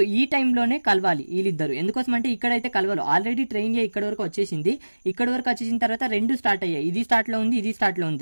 ఈ టైంలోనే కలవాలి వీళ్ళిద్దరు. ఎందుకోసం అంటే ఇక్కడైతే కలవాలి, ఆల్రెడీ ట్రైన్ ఇక్కడ వరకు వచ్చేసింది. ఇక్కడ వరకు వచ్చేసిన తర్వాత రెండు స్టార్ట్ అయ్యాయి, ఇది స్టార్ట్లో ఉంది ఇది స్టార్ట్లో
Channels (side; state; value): both; inverted; correlation -1.00